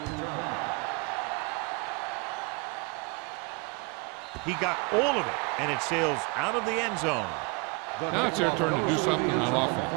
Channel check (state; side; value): quieter; left; 30.7 dB